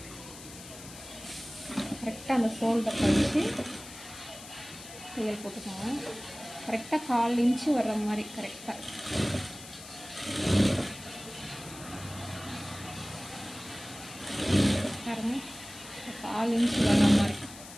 கரெக்டாக அந்த ஷோல்டர் வச்சு தையல் போட்டுக்கோங்க. கரெக்டாக 1/4 இன்ச்சு வர்ற மாதிரி கரெக்டாக. பாருங்க, 1/4 இன்ச்சு வர்ற மாதிரி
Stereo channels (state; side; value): noise; left; hiss, 15 dB below the sound